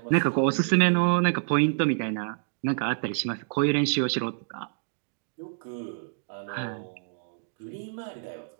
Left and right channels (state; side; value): silent; left; digital silence